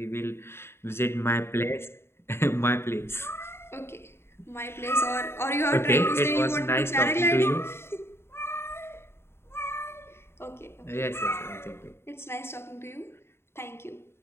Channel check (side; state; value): right; late; 0.12 ms